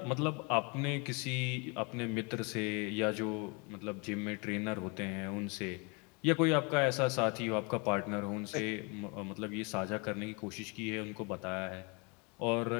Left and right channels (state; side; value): quieter; right; 31.0 dB